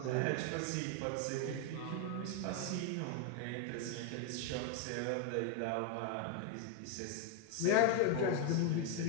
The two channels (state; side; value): different; both; correlation 0.01